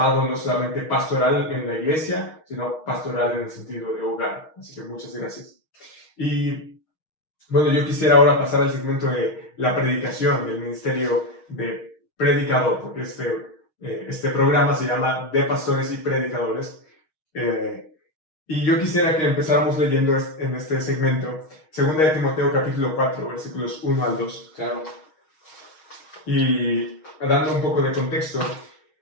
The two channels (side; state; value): right; late; 6.4 ms